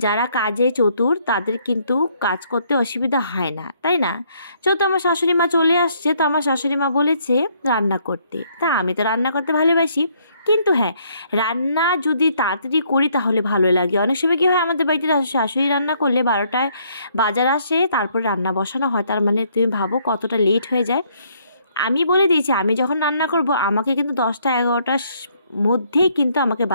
যারা কাজে চতুর তাদের কিন্তু কাজ করতে অসুবিধা হয় না, তাই না? যেহেতু আমার শাশুড়ি মা চলে আসছে, তো আমার শাশুড়ি মা বলেছে রান্না করতে, তা আমি তো রান্না করতে ভালোবাসি। কিন্তু হ্যাঁ, রান্না যদি তাড়াতাড়ি করি তাহলে ভালো লাগে। অনেক সময় কী হয়, আমাদের বাড়িতে শাশুড়ি রান্না করলে 12টায় বাজার আসে, তারপর রান্না বসানো হয়। তার তুমি ভাবো কতটা লেট হয়ে যায়। আমি বলে দিয়েছি, আমি যখন রান্না করব আমাকে কিন্তু 10টা-11টার মধ্যেই কিন্তু আমাকে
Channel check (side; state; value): both; inverted; correlation -0.68